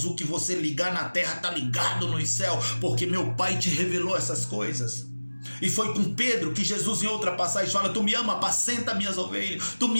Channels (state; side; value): inverted; both; correlation -1.00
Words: O que você ligar na terra está ligado no céu, porque meu Pai te revelou essas coisas. E foi com Pedro que Jesus em outra passagem fala, tu me ama, apacenta minhas ovelhas. Tu